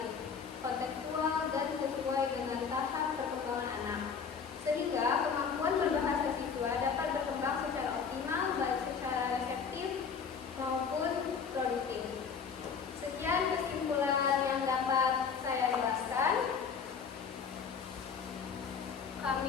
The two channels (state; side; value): quieter; right; 6.2 dB